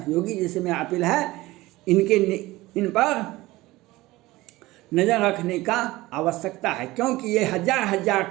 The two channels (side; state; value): left; quieter; 19.0 dB